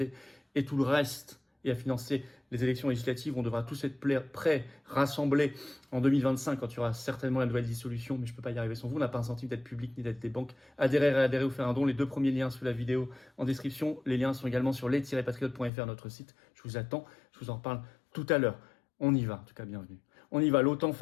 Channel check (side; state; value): right; drops out; at 15.7 s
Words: et tout le reste, et à financer les élections législatives. On devra tous être prêts, rassemblés en 2025 quand il y aura certainement la nouvelle dissolution, mais je ne peux pas y arriver sans vous. On n'a pas un centime d'aide publique ni d'aide des banques. Adhérer ou faire un don. Les deux premiers liens sous la vidéo en description. Les liens sont également sur les-patriotes.fr, notre site. Je vous attends, je vous en reparle tout à l'heure. On y va, en tout cas bienvenue. On y va, l'OTAN